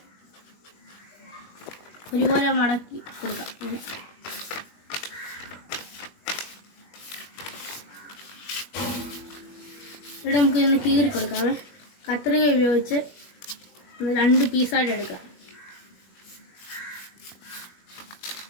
ഒരുപോലെ മടക്കി കൊടുക്കാം. ഇവിടെ നമുക്ക് ഇന്ന് കീറി കൊടുക്കാമേ. കത്രിക ഉപയോഗിച്ച് 2 പീസായിട്ട് എടുക്കാം.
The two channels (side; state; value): right; late; 21 ms